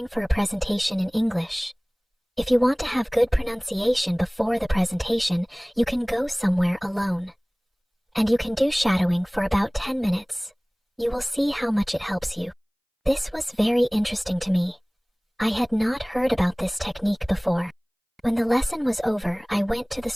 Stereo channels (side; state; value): both; identical; correlation 1.00